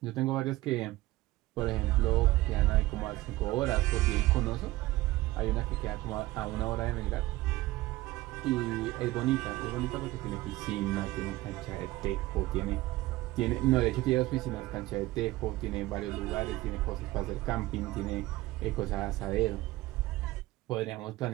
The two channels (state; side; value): quieter; left; 18.3 dB